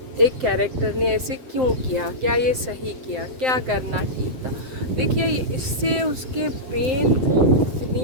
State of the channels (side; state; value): left; late; 7.7 ms